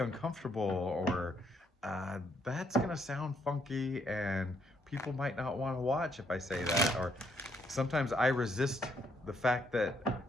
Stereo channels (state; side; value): normal; both; correlation 0.72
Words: or "That's gonna sound funky," and people might not want to watch if I say that. Or sometimes I resist the fact that